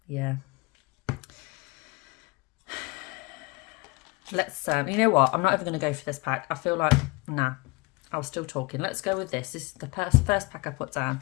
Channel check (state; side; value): quieter; right; 25.8 dB